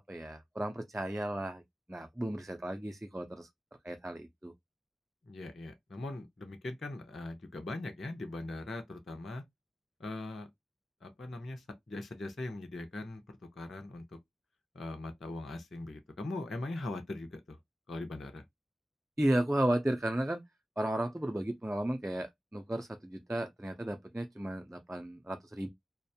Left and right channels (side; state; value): both; normal; correlation 0.94